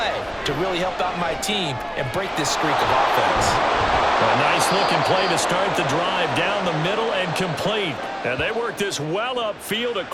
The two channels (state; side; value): identical; both; correlation 1.00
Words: to really help out my team and break this streak of offense? A nice-looking play to start the drive down the middle and complete. And they work this well upfield